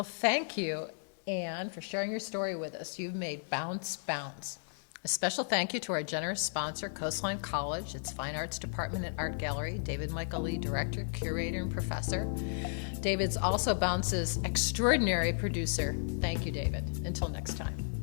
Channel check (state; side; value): silent; right; digital silence